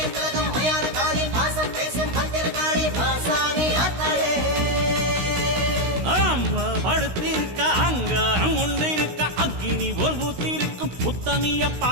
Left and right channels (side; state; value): left; late; 16 ms